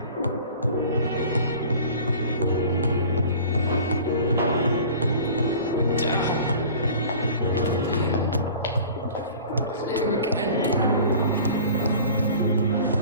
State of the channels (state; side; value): inverted; both; correlation -0.43